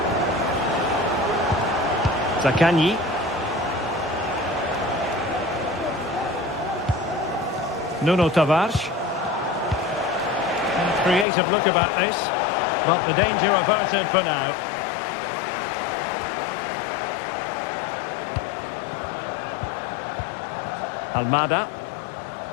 Zaccagni. Nuno Tavares. Creative look about this, but the danger averted for now. Almada.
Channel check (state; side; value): drops out; right; at 11.2 s